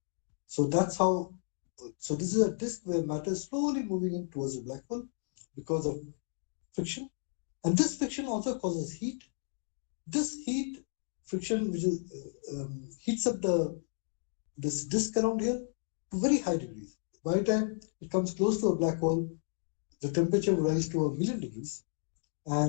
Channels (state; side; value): silent; right; digital silence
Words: So that's how. So this is a disk where matter is slowly moving in towards the black hole because of friction, and this friction also causes heat. This friction, which is heats up this disk around here to very high degrees. By the time it comes close to a black hole, the temperature will rise to 1,000,000 degrees,